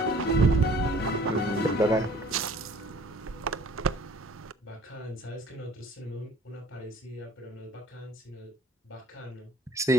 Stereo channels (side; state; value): both; normal; correlation 0.52